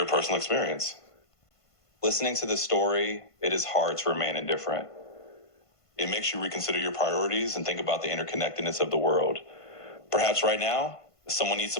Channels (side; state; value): right; late; 1.5 ms